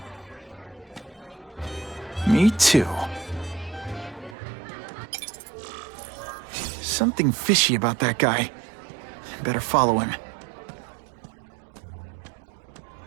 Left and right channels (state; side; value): drops out; left; at 4.4 s